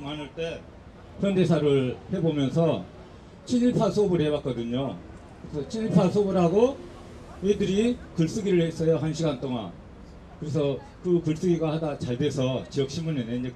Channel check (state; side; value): identical; both; correlation 1.00